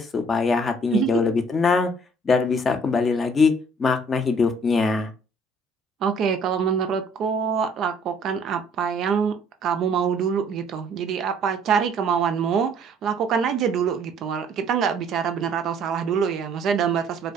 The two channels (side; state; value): both; normal; correlation 0.59